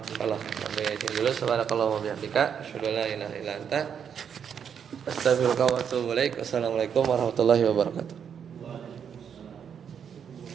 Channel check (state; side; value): quieter; left; 7.7 dB